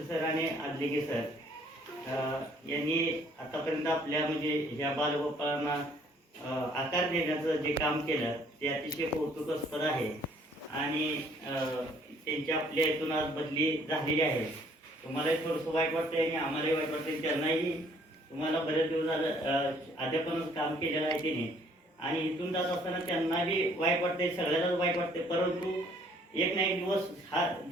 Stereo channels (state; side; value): normal; both; correlation 0.61